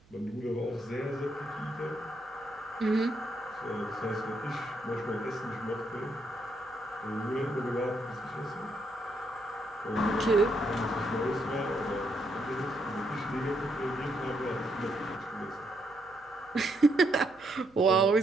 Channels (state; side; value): noise; right; hum, 28 dB below the sound